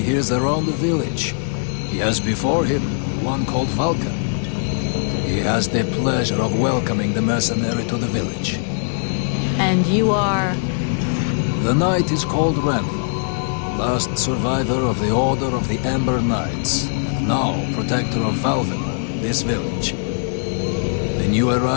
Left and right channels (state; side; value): silent; right; 65 dB below the other